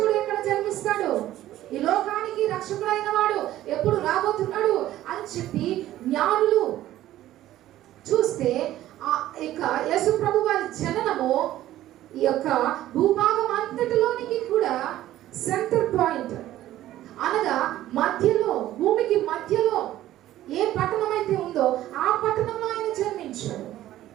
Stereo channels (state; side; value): quieter; left; 14.0 dB